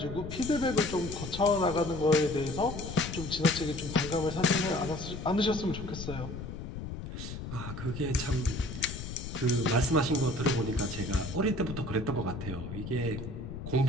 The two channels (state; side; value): noise; left; rumble, 8 dB below the sound